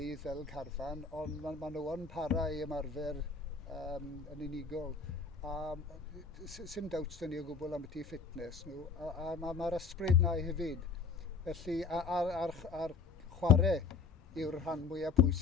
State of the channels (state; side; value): quieter; right; 5.0 dB